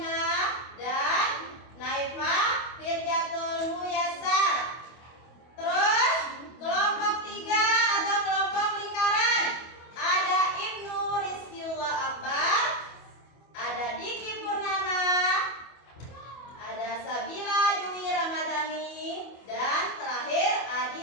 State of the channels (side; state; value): right; late; 25 ms